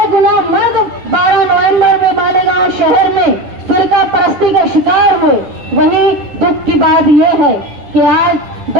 मर्द 12 नवंबर में मालेगांव शहर में फिरका परस्ती का शिकार हुए। वहीं दुख की बात यह है कि आज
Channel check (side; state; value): left; late; 10 ms